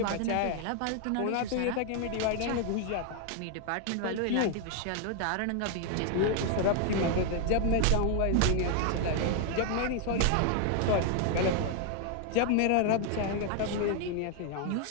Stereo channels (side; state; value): both; different; correlation 0.00